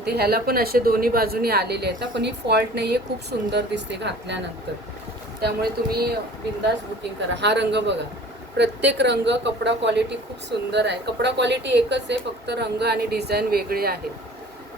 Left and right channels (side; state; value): both; normal; correlation 0.46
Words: ह्याला पण असे दोन्ही बाजूनी आलेले आहेत, पण ही फॉल्ट नाही आहे. खूप सुंदर दिसते घातल्यानंतर, त्यामुळे तुम्ही बिंदास बुकिंग करा. हा रंग बघा, प्रत्येक रंग, कपडा क्वालिटी खूप सुंदर आहे. कपडा क्वालिटी एकच आहे, फक्त रंग आणि डिझाईन वेगळे आहेत,